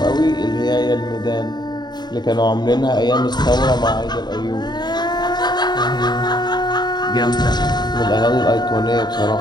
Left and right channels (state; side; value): late; right; 0.21 ms